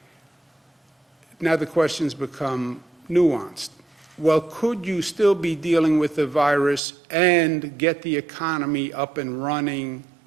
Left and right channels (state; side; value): drops out; left; at 6.8 s